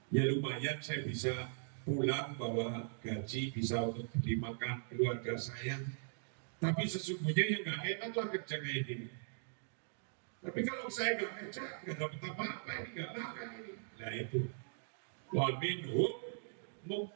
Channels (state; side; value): silent; left; digital silence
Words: ya lumayan saya bisa pulang bawa gaji, bisa untuk beli makan keluarga saya. Tapi sesungguhnya yang nggak enak lah kerja kayak gini. Tapi kalau saya nggak kerja, nggak dapat apa-apa, ini nggak makan ini. Nah itu, wa minhum